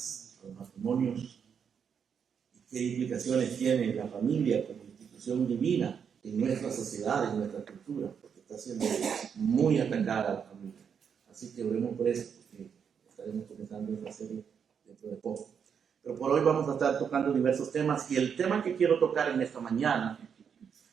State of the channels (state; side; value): quieter; left; 7.1 dB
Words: a los matrimonios, y qué implicaciones tiene la familia como institución divina en nuestra sociedad, en nuestra cultura, porque está siendo muy atacada la familia. Así que oremos por eso, porque estaremos comenzando esta serie dentro de poco. Pero por hoy vamos a estar tocando diversos temas, y el tema que quiero tocar en esta mañana